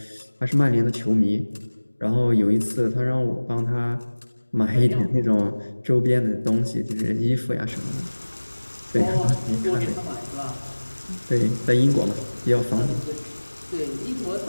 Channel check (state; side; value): inverted; both; correlation -1.00